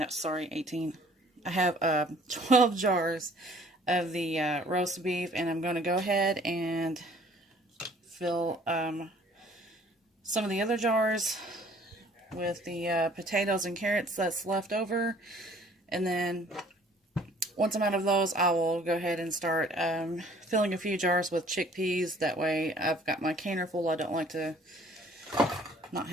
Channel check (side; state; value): both; normal; correlation 0.55